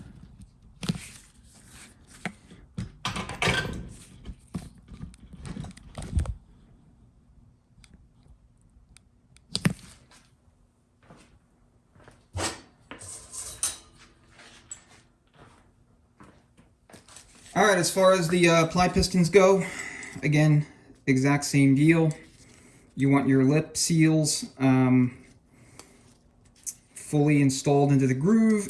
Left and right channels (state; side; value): identical; both; correlation 1.00